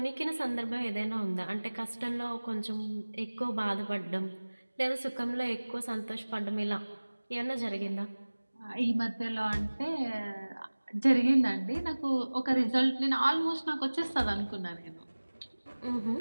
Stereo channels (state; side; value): inverted; both; correlation -1.00